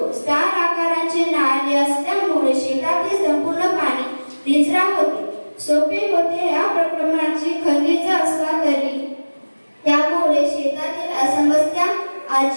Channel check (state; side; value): inverted; both; correlation -1.00